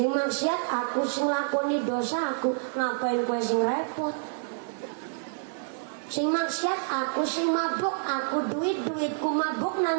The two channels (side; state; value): left; silent; digital silence